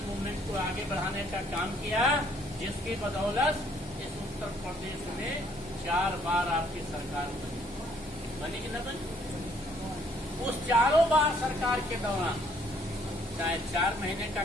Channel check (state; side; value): normal; both; correlation 0.64